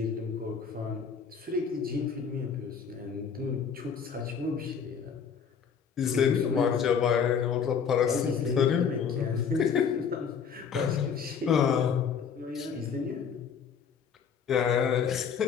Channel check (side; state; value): right; quieter; 6.8 dB